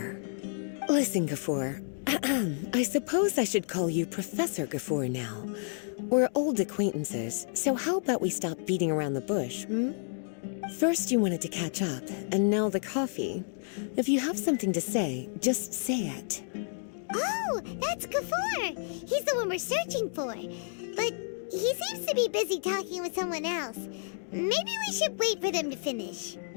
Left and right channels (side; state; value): right; silent; digital silence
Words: Listen, Gafoor. I suppose I should call you Professor Gafoor now. We're old acquaintances, so how about we stop beating around the bush, First you wanted to catch up, and now the coffee. If you have something to say, just say it. Oh, that's Gafoor. He's the one we're searching for. But he seems to be busy talking with someone else. Maybe we should wait for them to finish.